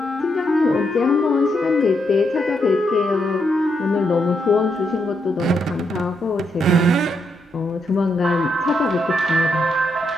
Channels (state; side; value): normal; both; correlation 0.79